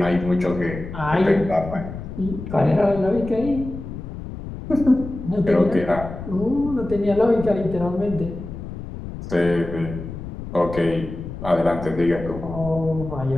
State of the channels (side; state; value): left; noise; rumble, 10 dB below the sound